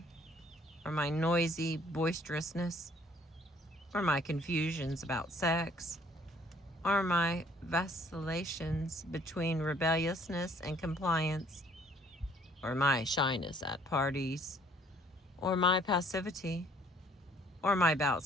or my noisy boisterousness, or my confusions about sex, or my vacillations between rebelliousness and compliance, or my shyness at parties, or my passivity, or my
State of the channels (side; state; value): both; normal; correlation 0.60